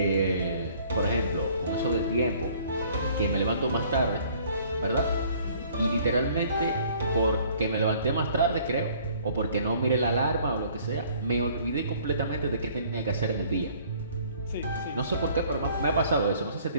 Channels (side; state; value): both; inverted; correlation -0.57